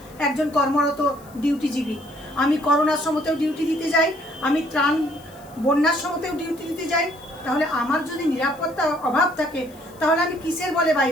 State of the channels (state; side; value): noise; left; hiss, 25 dB below the sound